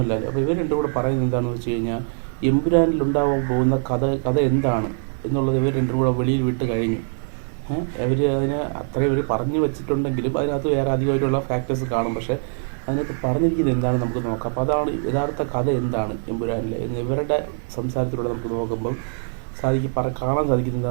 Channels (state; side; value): silent; left; digital silence